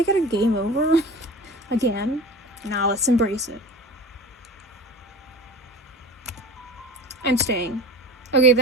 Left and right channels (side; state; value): both; normal; correlation 0.35